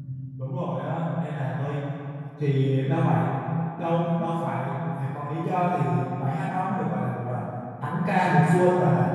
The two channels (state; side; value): identical; both; correlation 1.00